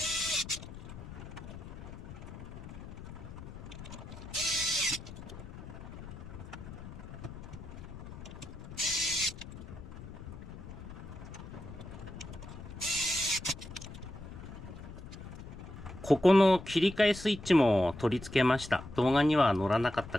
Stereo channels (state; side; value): noise; left; rumble, 12 dB below the sound